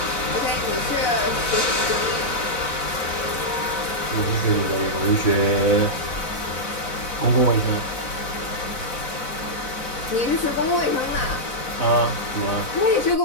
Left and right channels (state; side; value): late; right; 4.0 ms